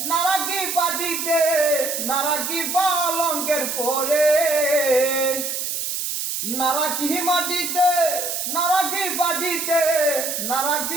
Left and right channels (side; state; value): right; noise; hiss, 3 dB below the sound